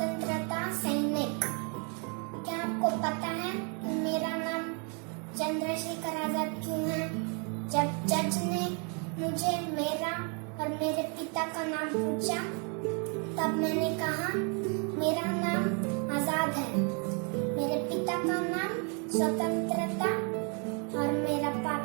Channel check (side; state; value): left; quieter; 37.0 dB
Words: सैनिक। क्या आपको पता है कि मेरा नाम चंद्रशेखर आजाद क्यों है? जब जज ने मुझे मेरा और मेरे पिता का नाम पूछा तब मैंने कहा मेरा नाम आजाद है, मेरे पिता का नाम स्वतंत्रता और मेरा